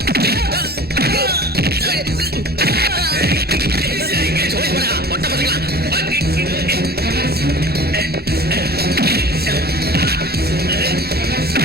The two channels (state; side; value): normal; both; correlation 0.41